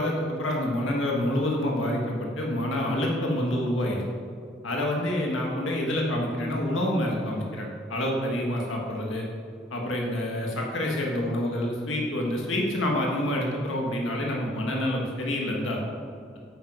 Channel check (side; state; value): both; normal; correlation 0.59